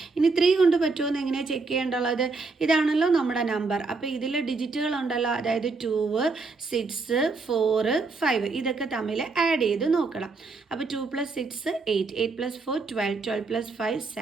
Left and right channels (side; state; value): left; quieter; 4.0 dB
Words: ഇനി 3 കൊണ്ട് പറ്റുമോ എന്ന് എങ്ങനെയാണ് ചെക്ക് ചെയ്യേണ്ടുള്ളത്, ഇതാണല്ലോ നമ്മുടെ നമ്പർ. അപ്പോൾ ഇതിൽ ഡിജിറ്റുകൾ ഉണ്ടല്ലോ, അതായത് 2, 6, 4, 5 ഇതൊക്കെ തമ്മിൽ ആഡ് ചെയ്ത് നോക്കണം. അപ്പോൾ 2 + 6 8, 8 + 4 12, 12 + 5